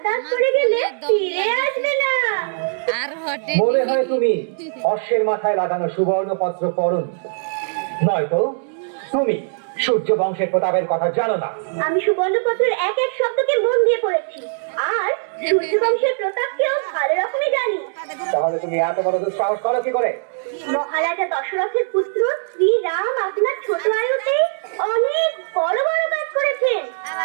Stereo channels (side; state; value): left; silent; digital silence